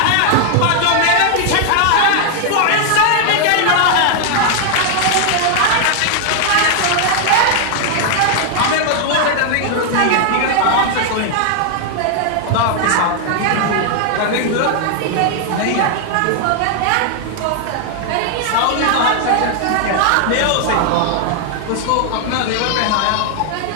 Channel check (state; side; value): different; both; correlation 0.00